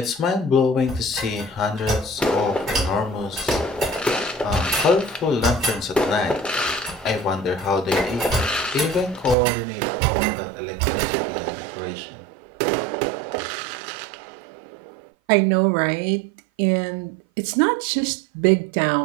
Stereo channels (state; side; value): drops out; left; at 9.3 s